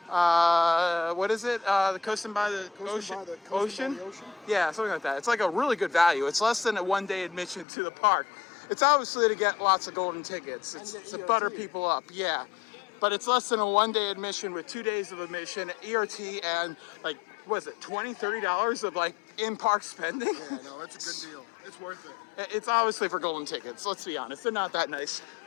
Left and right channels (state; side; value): drops out; right; at 7.7 s